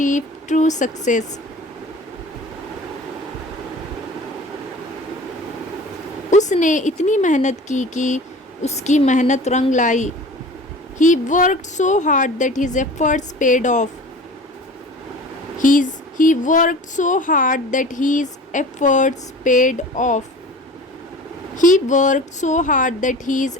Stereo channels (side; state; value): both; normal; correlation 0.40